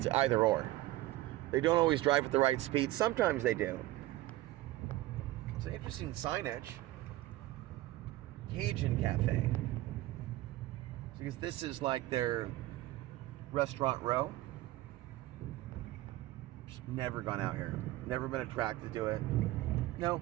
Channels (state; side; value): quieter; left; 16.8 dB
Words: either or. They don't always drive at the right speed. Sometimes they do. It's an interesting signage. Cajun Cafe. Because this is like their restaurant row. Just never gone out here. Never been attracted to it. No.